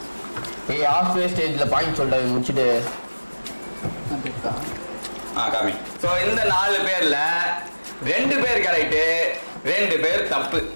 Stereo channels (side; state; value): both; inverted; correlation -1.00